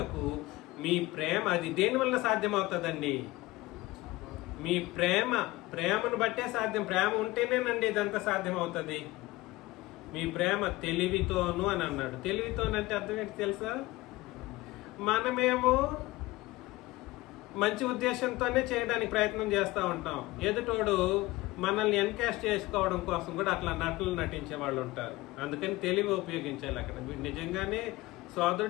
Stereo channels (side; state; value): right; quieter; 19.5 dB